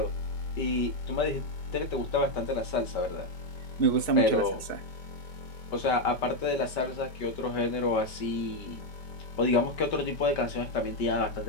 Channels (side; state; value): right; late; 5.2 ms